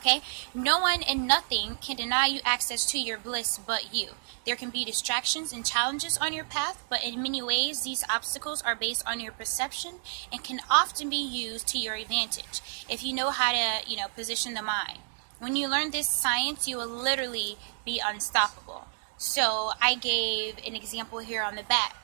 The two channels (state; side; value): silent; left; digital silence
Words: no one and nothing can deny you access to your bliss but you. There can be distractions and challenges on your path, but in many ways, these obstacles are based on your perception and can often be used to your advantage if you know how to, position the mind. When you learn this science, you will literally be unstoppable. So I gave an example here on the back.